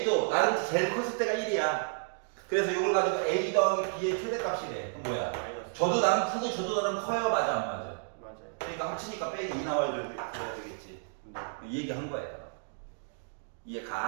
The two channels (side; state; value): left; silent; digital silence